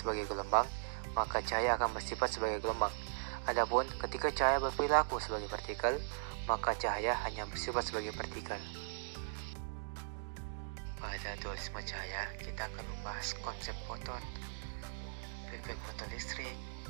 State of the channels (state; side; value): silent; left; digital silence